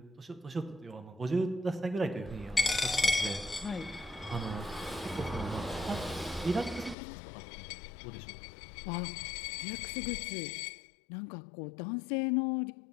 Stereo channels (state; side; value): drops out; right; at 7.0 s